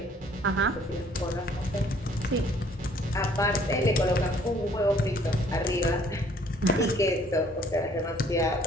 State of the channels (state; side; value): normal; both; correlation 0.60